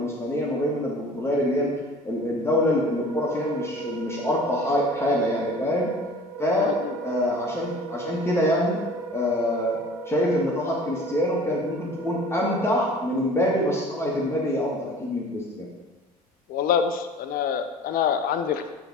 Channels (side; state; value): both; normal; correlation 0.44